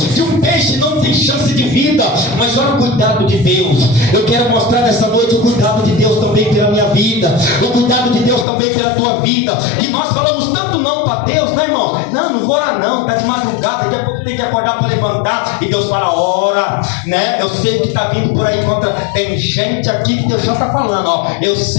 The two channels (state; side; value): drops out; right; at 8.5 s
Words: um peixe, não tem chance de vida. Mas olha o cuidado de Deus. Eu quero mostrar nessa noite o cuidado de Deus também pela minha vida, o cuidado de Deus também pela tua vida. Que nós falamos tanto não para Deus, né, irmão? Não vou orar não, está de madrugada, daqui a pouco tem que acordar para levantar. E Deus fala: ora, né? Eu sei o que está vindo por aí contra. Tem gente aqui que Deus já está falando, ó. Eu